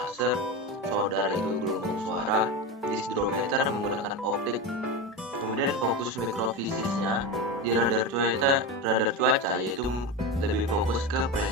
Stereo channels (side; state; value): both; normal; correlation 0.19